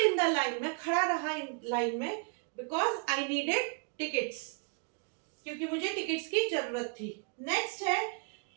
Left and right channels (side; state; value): left; quieter; 39.0 dB